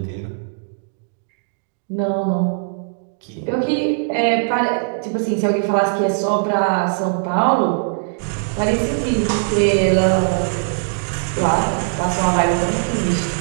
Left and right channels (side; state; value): left; silent; digital silence